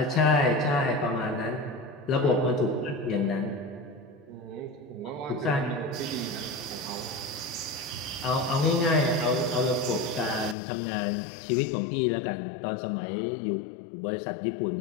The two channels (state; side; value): drops out; right; at 10.6 s